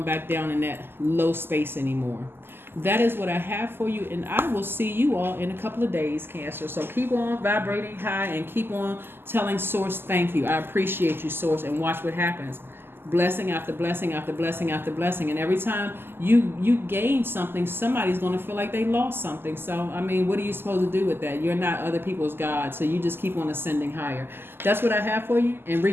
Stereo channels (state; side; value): late; left; 0.11 ms